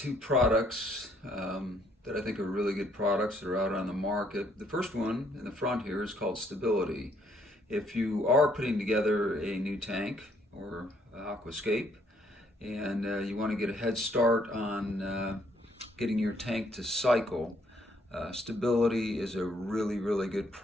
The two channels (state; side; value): normal; both; correlation 0.68